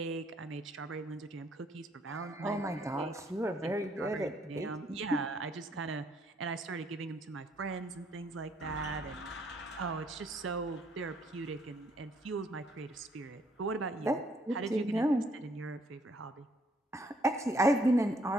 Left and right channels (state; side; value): normal; both; correlation 0.68